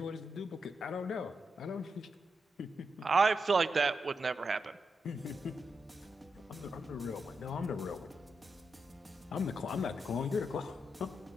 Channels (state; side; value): normal; both; correlation 0.85